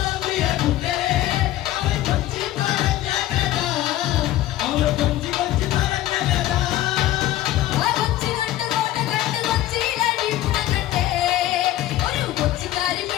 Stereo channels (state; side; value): quieter; right; 14.5 dB